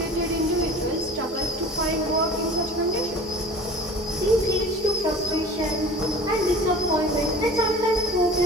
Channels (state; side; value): normal; both; correlation 0.40